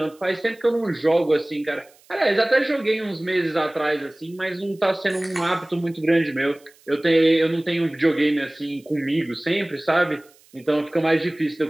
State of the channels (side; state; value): right; noise; hiss, 29 dB below the sound